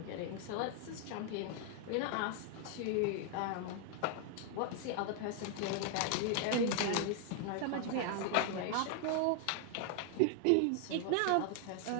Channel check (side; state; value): both; different; correlation 0.00